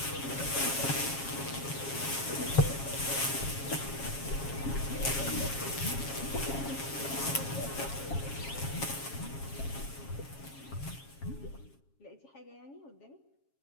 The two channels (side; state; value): right; late; 7.3 ms